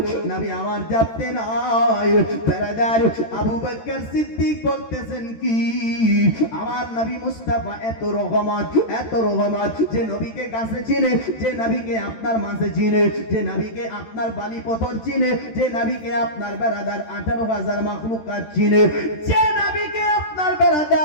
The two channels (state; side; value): late; right; 13 ms